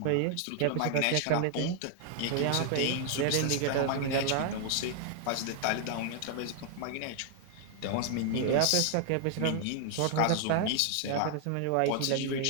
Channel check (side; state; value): both; different; correlation 0.00